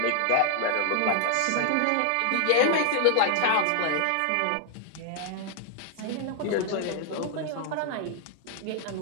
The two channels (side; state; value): both; different; correlation 0.00